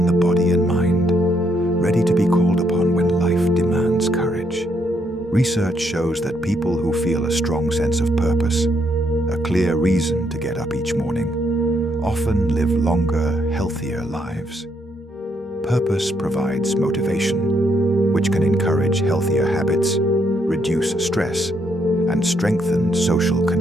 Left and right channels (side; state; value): both; normal; correlation 0.74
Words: the body and mind, ready to be called upon when life demands courage. Research shows that people who feel a strong sense of purpose, a clear reason to get up each morning, often live longer, healthier lives. Purpose provides motivation, which can encourage healthier habits, reduce stress, and strengthen social